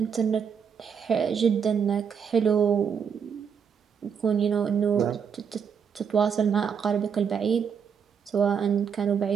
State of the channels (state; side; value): quieter; left; 7.0 dB